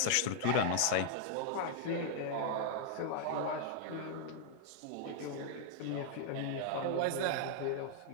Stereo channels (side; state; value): both; different; correlation -0.01